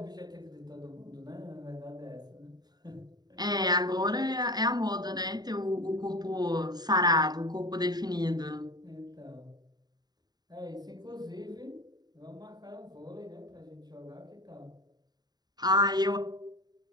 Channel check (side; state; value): left; late; 0.20 ms